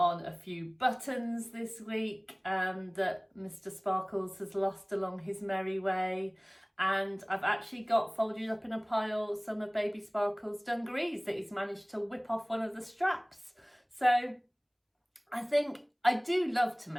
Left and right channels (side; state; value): both; identical; correlation 1.00